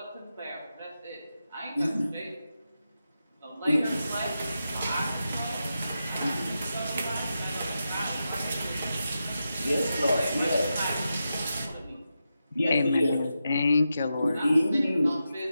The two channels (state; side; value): inverted; both; correlation -0.89